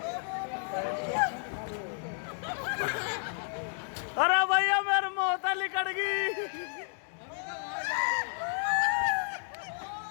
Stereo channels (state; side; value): silent; right; 57 dB below the other